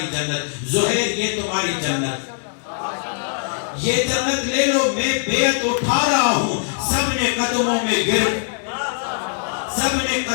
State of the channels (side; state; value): right; silent; digital silence